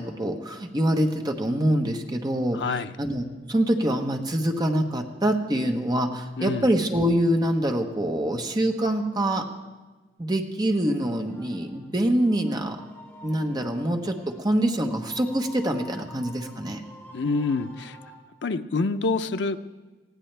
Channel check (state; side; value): normal; both; correlation 0.78